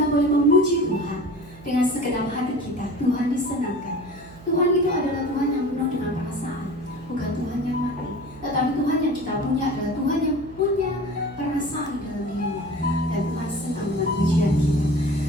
boleh memuji Tuhan dengan segenap hati kita, Tuhan disenangkan. Tuhan itu adalah Tuhan yang penuh dengan perasaan, bukan Tuhan yang mati. Tetapi Tuhan yang kita punya adalah Tuhan yang punya perasaan dalam dirinya. Dan Tuhan senang dengan pujian kita.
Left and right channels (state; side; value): noise; right; hum, 19 dB below the sound